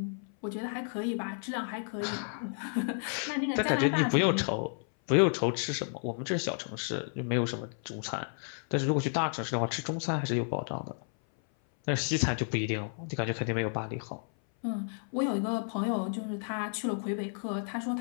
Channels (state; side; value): silent; right; 57 dB below the other